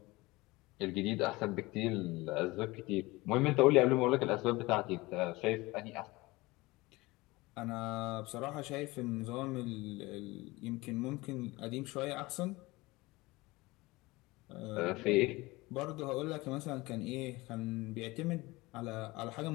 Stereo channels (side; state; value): right; quieter; 21.6 dB